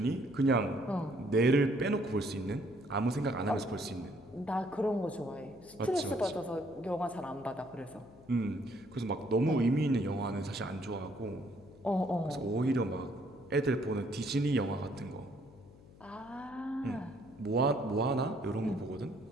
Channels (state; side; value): noise; left; hum, 22 dB below the sound